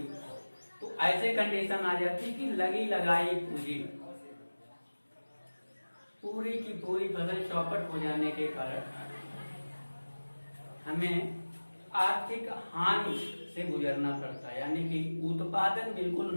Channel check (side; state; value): both; inverted; correlation -1.00